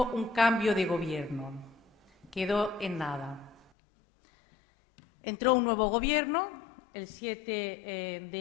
un cambio de gobierno. Quedó en nada. Entró un nuevo gobierno el 7 de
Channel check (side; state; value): right; drops out; at 3.7 s